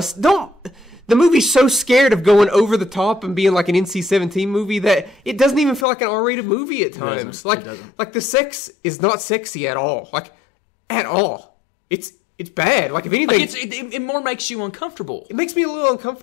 The movie's so scared of going over the top and being like an NC-17 movie that it doesn't even feel like an R-rated movie at times. Like the sex is not sexy at all. Like, at all. It's bad. Like, if anything... It more makes you uncomfortable. It makes me a little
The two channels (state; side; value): drops out; right; at 5.9 s